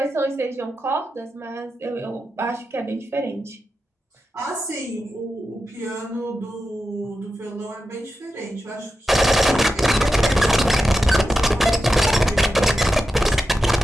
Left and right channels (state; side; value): normal; both; correlation 0.90